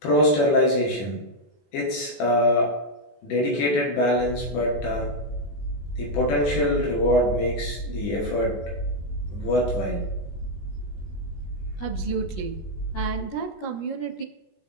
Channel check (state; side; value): late; right; 17 ms